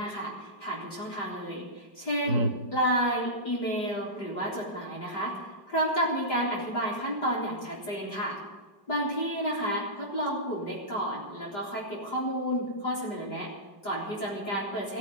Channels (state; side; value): late; right; 5.0 ms